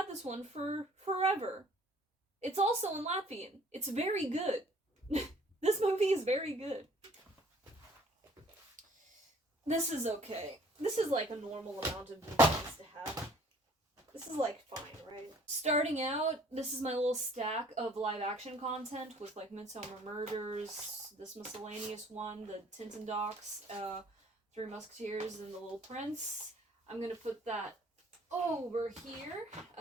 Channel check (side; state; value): both; normal; correlation 0.56